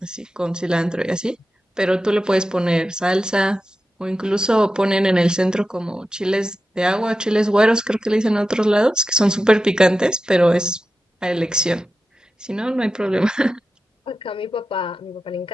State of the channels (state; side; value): normal; both; correlation 0.92